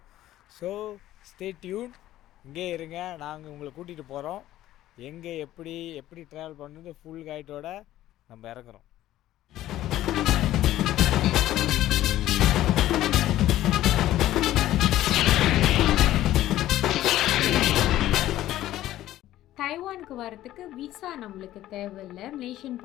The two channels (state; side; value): quieter; right; 14.1 dB